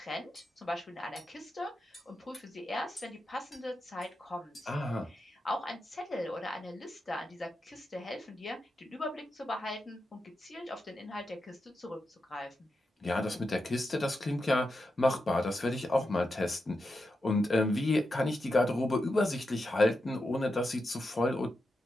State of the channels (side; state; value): both; normal; correlation 0.88